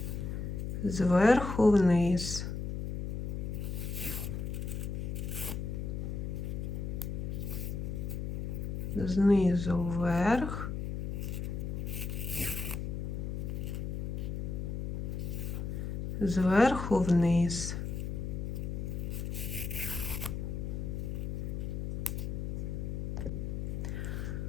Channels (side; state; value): left; noise; hum, 3 dB below the sound